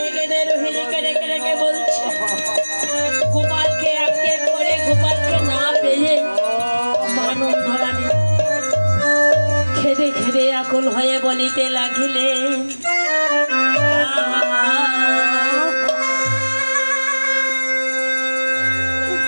কেঁদে রোহিণীকে ডেকে ডেকে বলছে, গোপালকে আটকে পড়ে গোপালকে না পেয়ে মা নন্দরানী খেদে খেদে আকুল হয়ে বলিতে লাগিলে,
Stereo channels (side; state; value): both; inverted; correlation -1.00